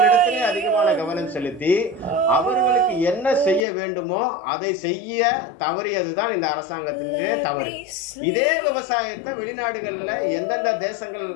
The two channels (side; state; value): right; drops out; at 3.7 s